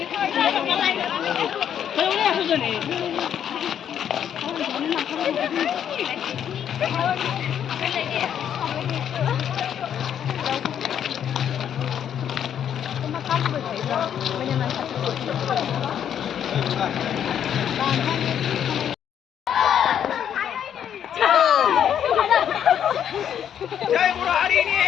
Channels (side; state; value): right; quieter; 9.2 dB